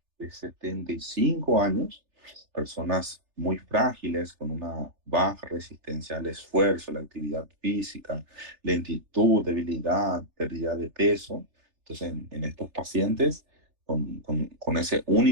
de 75 años, personas muy frágiles, con una baja resistencia al esfuerzo, la actividad física, lentitud, debilidad, pérdida de peso. Entonces, en estos pacientes, con ese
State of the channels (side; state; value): left; late; 3.3 ms